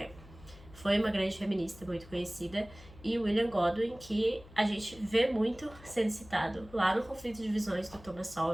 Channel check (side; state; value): left; noise; hum, 20 dB below the sound